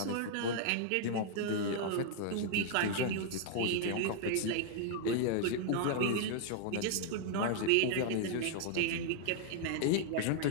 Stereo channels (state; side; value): different; both; correlation -0.01